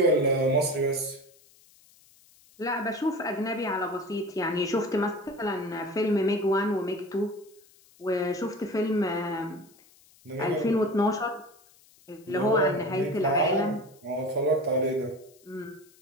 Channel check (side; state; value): left; noise; hiss, 28 dB below the sound